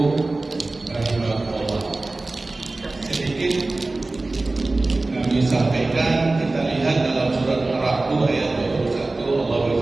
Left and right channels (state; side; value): quieter; left; 3.2 dB